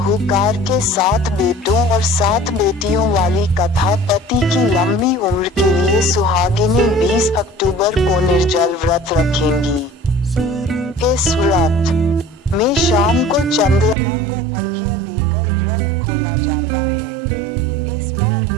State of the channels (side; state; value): left; drops out; at 14.0 s